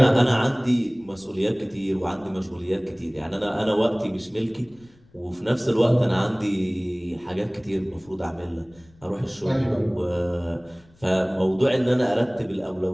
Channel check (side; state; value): left; noise; rumble, 29 dB below the sound